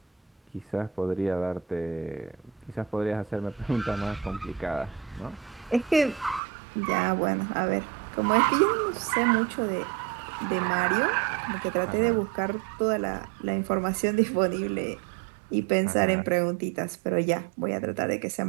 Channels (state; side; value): drops out; left; at 6.4 s